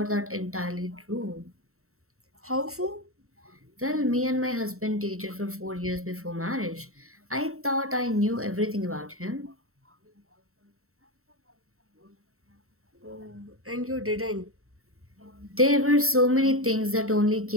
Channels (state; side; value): late; left; 0.63 ms